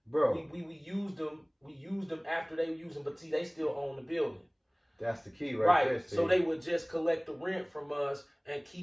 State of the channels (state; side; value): identical; both; correlation 1.00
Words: Bro, we used them. We used them after they used them, but see, they still own the building. That's the key right there. So they would just collect the rent from us and